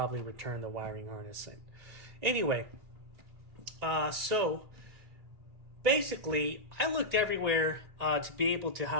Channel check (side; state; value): left; late; 2.6 ms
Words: return the wiring harness in. Anyway, so basically I looked everywhere to be able